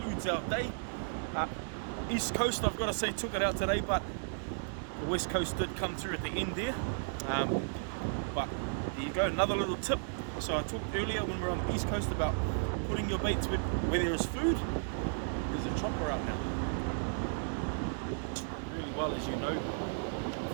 our day. East Coast, I've got to say, took it out today, but the west coast did come through at the end there. But there you go, another little tip. So I talked earlier when we were on the east coast about putting your baits where there is food. There's a chopper out now. Really well, as you know,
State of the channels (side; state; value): left; silent; digital silence